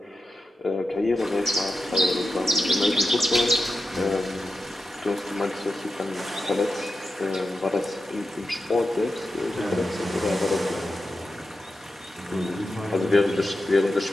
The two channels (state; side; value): normal; both; correlation 0.90